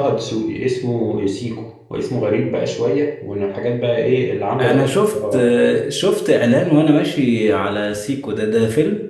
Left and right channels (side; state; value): both; identical; correlation 1.00